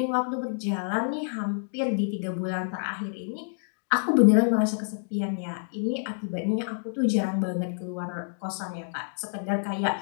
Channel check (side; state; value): right; silent; digital silence